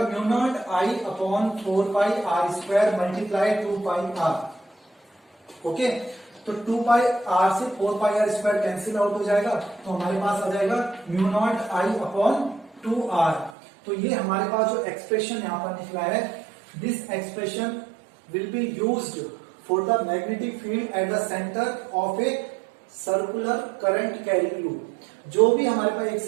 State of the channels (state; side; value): drops out; left; at 13.6 s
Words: mu naught I upon 4 pi R square multiply 2 pi r। Okay, तो 2 पाई r से 4 pi r square cancel out हो जाएगा, तो हमारे पास आ जाएगा mu naught I upon 2r। तो ये हमारे पास जो एक्सप्रेशन यहाँ पर निकला है, this expression will be used for the magnetic field at the centre of a circular current carrying loop. जो भी हमारे पास एक